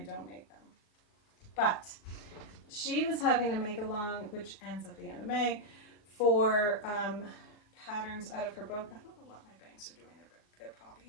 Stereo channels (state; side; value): late; right; 39 ms